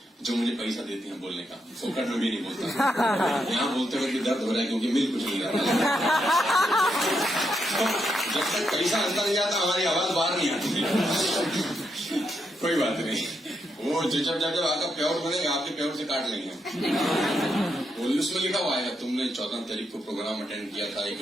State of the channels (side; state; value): both; normal; correlation 0.81